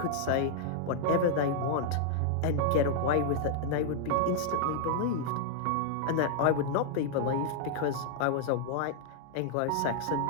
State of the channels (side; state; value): both; different; correlation -0.01